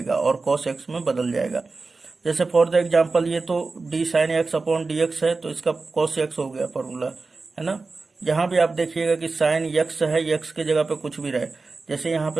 और cos x में बदल जाएगा। जैसे फॉर द एग्जाम्पल ये तो d sin x upon d x है, तो इसका cos x हो गया फॉर्मूला, है ना। यहाँ भी आप देखिएगा कि sin x है, x के जगह पे कुछ भी रहे, जैसे यहाँ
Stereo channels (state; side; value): quieter; left; 3.9 dB